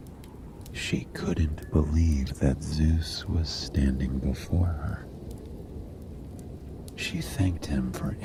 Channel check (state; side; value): identical; both; correlation 1.00